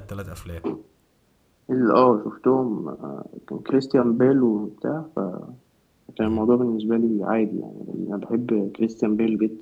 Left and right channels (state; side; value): identical; both; correlation 1.00